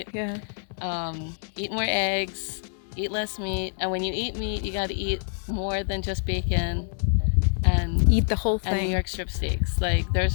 Yeah. Eat more eggs, eat less meat, and when you eat meat, you got to eat more than just bacon and eat the whole thing. And New York strip steaks. Like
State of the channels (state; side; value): silent; right; 56 dB below the other